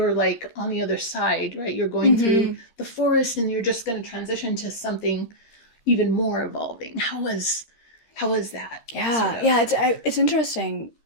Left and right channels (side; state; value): right; late; 13 ms